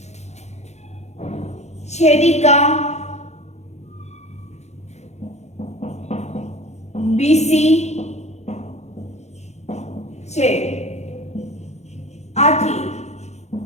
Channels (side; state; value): right; late; 0.32 ms